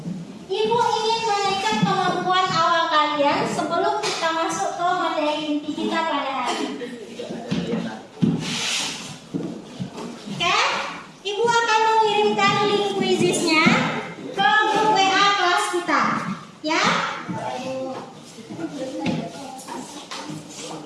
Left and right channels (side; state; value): both; identical; correlation 1.00